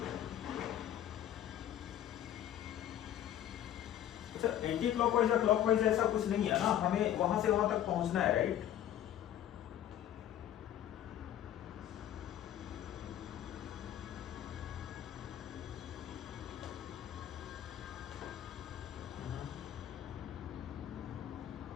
अच्छा एंटी क्लॉकवाइज या क्लॉकवाइज ऐसा कुछ नहीं है ना, हमें वहां से वहां तक पहुंचना है, राइट।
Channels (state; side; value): quieter; right; 11.3 dB